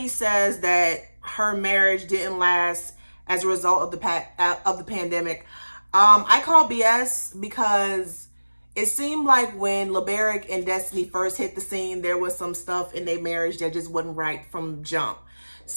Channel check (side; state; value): both; inverted; correlation -1.00